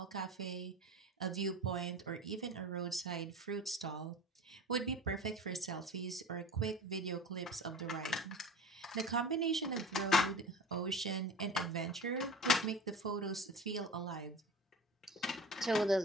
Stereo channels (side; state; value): both; normal; correlation 0.34